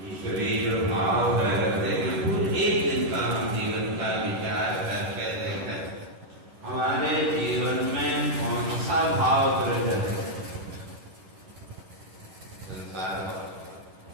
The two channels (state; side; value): late; left; 11 ms